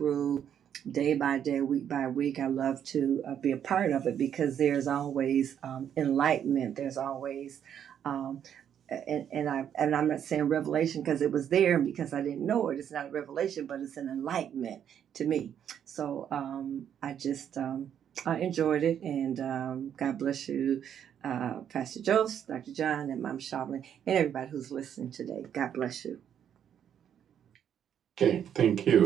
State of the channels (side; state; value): left; quieter; 9.1 dB